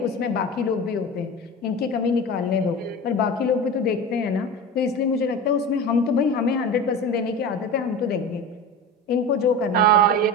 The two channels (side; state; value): both; normal; correlation 0.30